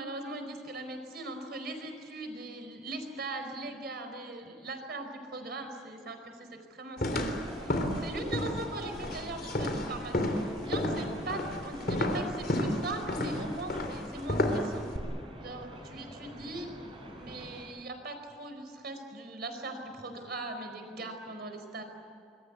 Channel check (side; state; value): both; normal; correlation 0.48